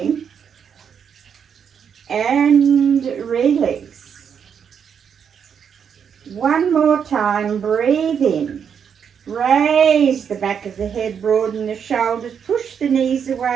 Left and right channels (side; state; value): left; quieter; 7.4 dB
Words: And release. One more time, breathe in. Raise the back of the head, broaden the shoulders, push the knees